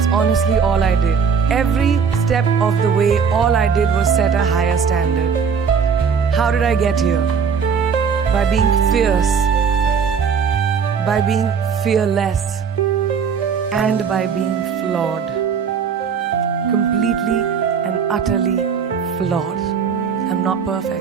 honestly all I did. Every step of the way, all I did was set a higher standard. How did I get here? By being fierce, by being fearless, and by being flawed. Completely and utterly flawed. I'm not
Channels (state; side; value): quieter; left; 6.4 dB